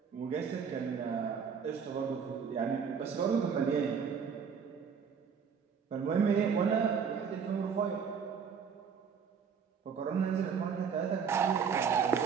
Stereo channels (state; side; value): quieter; left; 6.6 dB